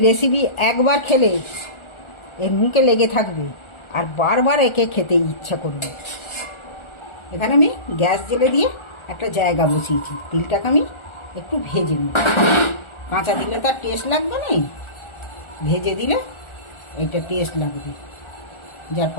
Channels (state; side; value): late; right; 1.4 ms